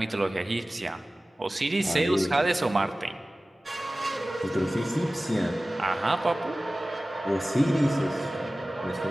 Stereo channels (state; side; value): normal; both; correlation 0.97